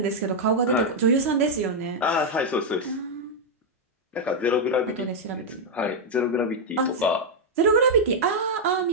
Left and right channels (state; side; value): normal; both; correlation -0.02